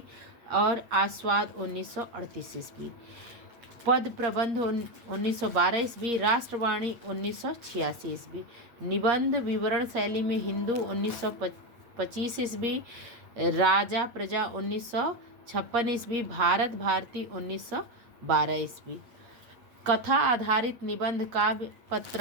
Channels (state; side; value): late; left; 8.5 ms